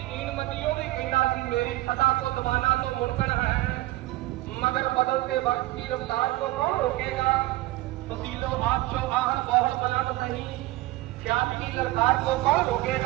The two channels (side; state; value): left; quieter; 18.4 dB